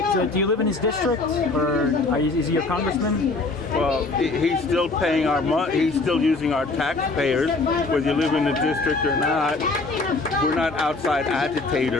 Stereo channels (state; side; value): quieter; right; 3.5 dB